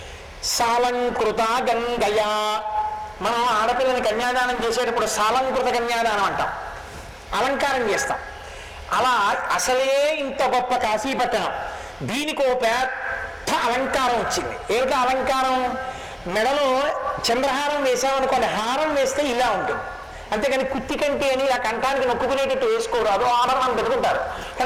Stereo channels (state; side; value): identical; both; correlation 1.00